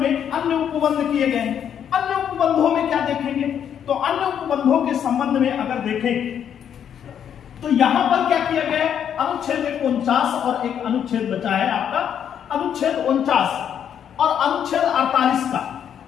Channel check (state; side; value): quieter; right; 8.8 dB